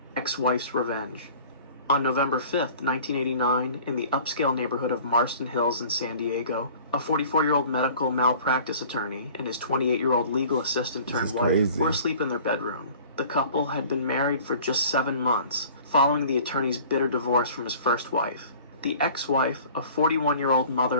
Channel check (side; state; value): both; inverted; correlation -0.47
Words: Ex-wife's revenge. On November 5th, 1989, in the upscale neighborhood of Marston Hills in San Diego, a 44-year-old medical malpractice attorney and his 28-year-old legal assistant turned wife were asleep in their bedroom. The couple had been married for just 7 months, following the attorney's bitter divorce from his first wife. The ex-wife, a 41-year-old